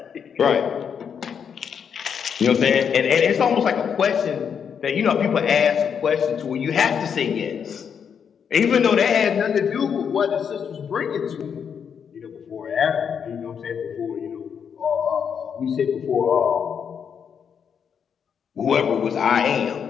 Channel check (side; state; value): right; quieter; 7.3 dB